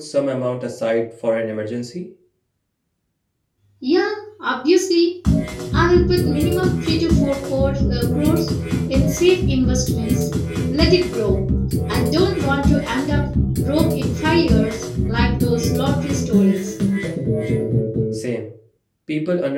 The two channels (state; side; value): identical; both; correlation 1.00